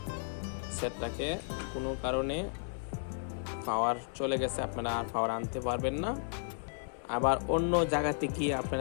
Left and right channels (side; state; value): right; silent; 55 dB below the other